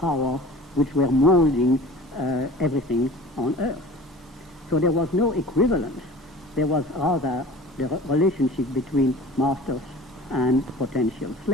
which were molding everything on earth. So there was no equivalence. There was rather the relationship between masters and potential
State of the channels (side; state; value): both; normal; correlation 0.42